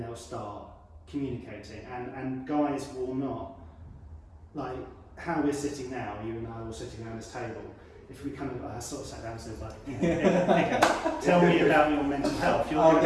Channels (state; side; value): identical; both; correlation 1.00